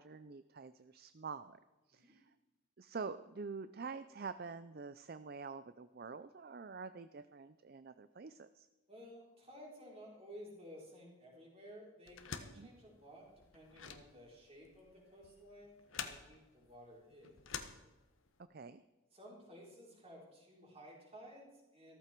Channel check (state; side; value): normal; both; correlation -0.02